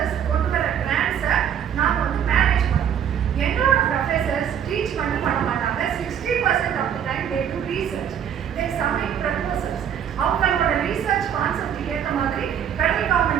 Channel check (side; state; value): left; quieter; 8.9 dB